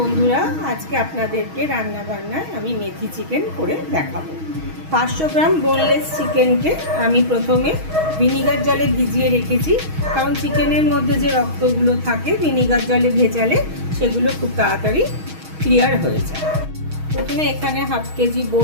আজকে আপনাদেরকে রান্না বান্নায় আমি মেথি চিকেন করে দেখাবো। 500 গ্রাম বোনলেস চিকেনকে আমি প্রথমে ভিনিগার জলে ভিজিয়ে রেখেছি, কারণ চিকেনের মধ্যে যে রক্তগুলো থাকে ভিনিগার জলে ভেজালে সেগুলো খুব তাড়াতাড়ি ক্লিয়ার হয়ে যায়। প্রথমে এখানে হাফ কেজি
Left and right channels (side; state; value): left; late; 6.3 ms